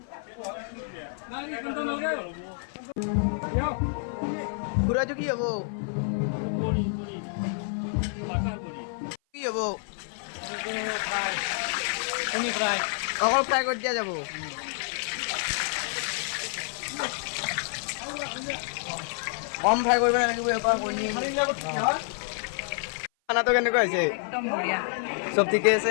খুৰাটো কি হ'ব কি হ'ব অকল ফ্ৰাই কৰি দিয়া যাব। কম ফ্ৰাই কৰিব নালাগিব, এবাৰ কণী। খানাটো কেনেকুৱা হৈছে? একদম বঢ়িয়া, চব ঠিকে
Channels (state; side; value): silent; right; 55 dB below the other